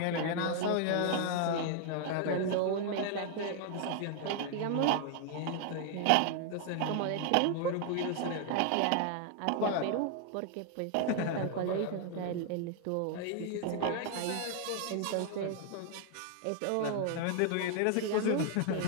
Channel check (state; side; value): different; both; correlation 0.00